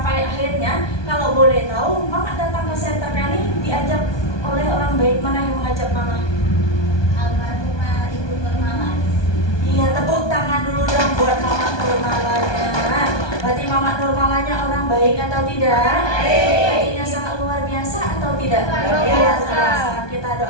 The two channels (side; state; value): right; late; 1.2 ms